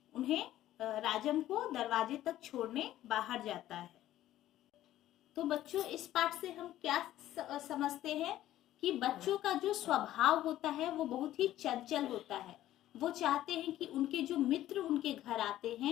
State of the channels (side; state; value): right; quieter; 13.6 dB